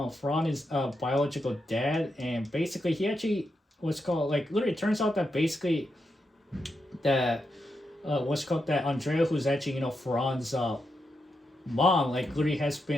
is biological dad, and basically he actually literally it turns out that basically that that Andrea, who's actually Farhan's mom, literally has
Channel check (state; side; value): normal; both; correlation 0.85